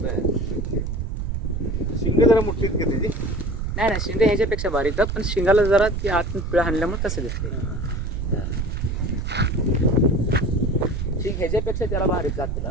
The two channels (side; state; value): right; noise; rumble, 3 dB below the sound